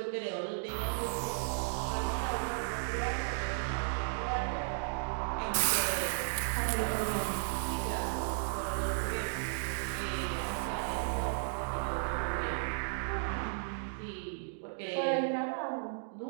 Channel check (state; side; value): silent; left; digital silence